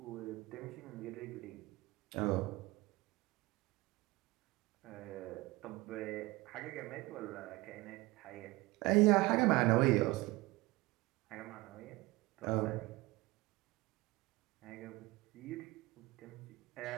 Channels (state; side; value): quieter; left; 20.9 dB